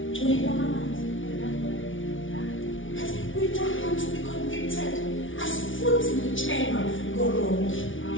We don't want to be convicted asifuthi ngitshelwa ngorongi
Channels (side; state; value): right; late; 0.57 ms